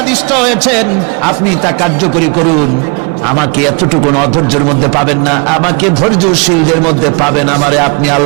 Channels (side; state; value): left; quieter; 32.6 dB